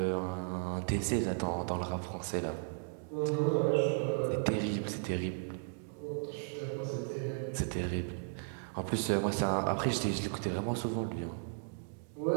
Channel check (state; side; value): silent; left; digital silence